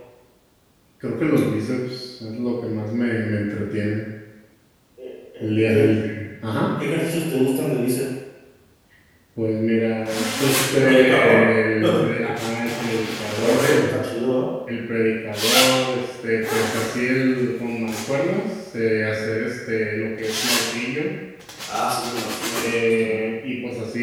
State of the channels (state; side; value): identical; both; correlation 1.00